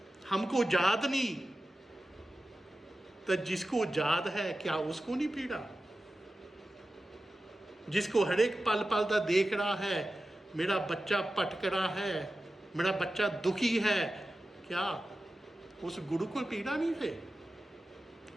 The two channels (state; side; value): normal; both; correlation 0.94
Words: हमको याद नहीं, तो जिसको याद है क्या उसको नहीं पीड़ा? जिसको हर एक पल पल का देख रहा है, मेरा बच्चा भटक रहा है, मेरा बच्चा दुखी है, क्या उस गुरु को पीड़ा नहीं है?